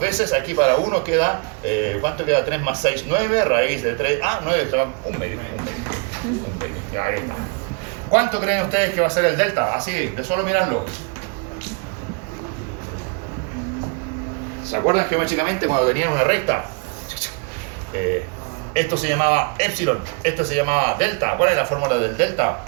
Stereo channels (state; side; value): quieter; left; 34.8 dB